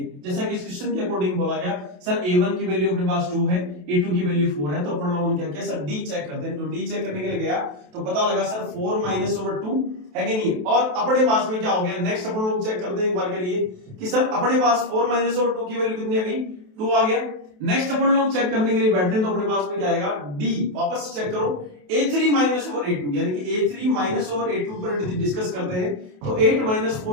जैसा कि इस क्वेश्चन के अकॉर्डिंग बोला गया, सर A1 की वैल्यू अपने पास 2 है, A2 की वैल्यू 4 है, तो अपन लोगों ने क्या किया, सर डी चेक करते हैं। तो डी चेक करने के लिए गया तो पता लगा सर 4 - 2 है कि नहीं। और अपने पास में क्या हो गया, नेक्स्ट अपन लोग चेक करते हैं एक बार के लिए कि सर अपने पास 4 - 2 की वैल्यू कितनी आ गई, 2 आ गया। नेक्स्ट अपन लोग चेक करने के लिए बैठते हैं तो अपने पास में क्या आएगा, डी। वापस चेक करो, A3 - A2, यानी कि A3 - A2 पर यदि डिस्कस करते हैं तो 8 -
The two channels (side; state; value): left; late; 28 ms